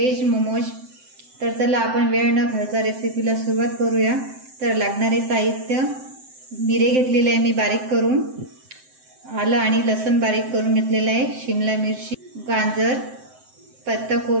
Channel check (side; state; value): left; late; 7.7 ms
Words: मोमोज। तर चला आपण वेळ न घालता रेसिपीला सुरुवात करूया। तर लागणारे साहित्य, मिरे घेतलेले आहे मी बारीक करून, आलं आणि लसूण बारीक करून घेतलेलं आहे, शिमला मिरची, गाजर,